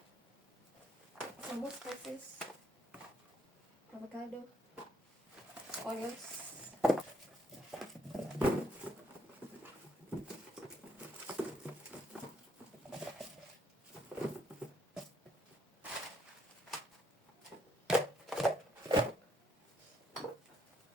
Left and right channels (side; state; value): both; normal; correlation 0.71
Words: Some more spices. Avocado. Onions.